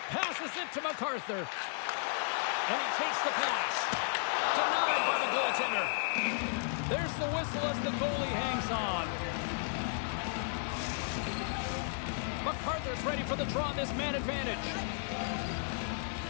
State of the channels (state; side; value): silent; right; digital silence